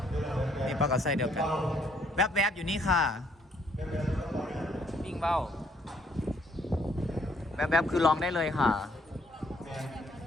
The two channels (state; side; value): normal; both; correlation 0.67